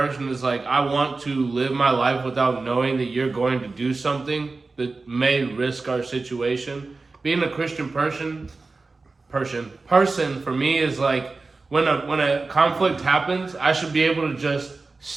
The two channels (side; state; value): left; quieter; 3.7 dB